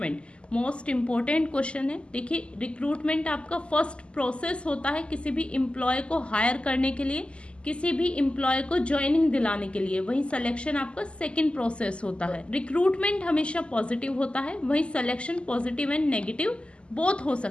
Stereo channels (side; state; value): right; late; 0.053 ms